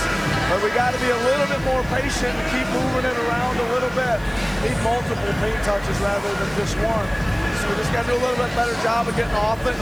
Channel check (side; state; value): right; noise; hiss, 26 dB below the sound